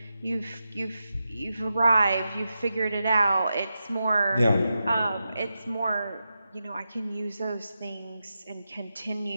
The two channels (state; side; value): inverted; both; correlation -0.89